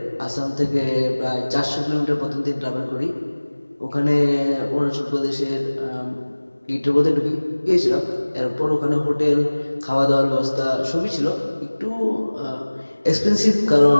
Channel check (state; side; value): inverted; both; correlation -1.00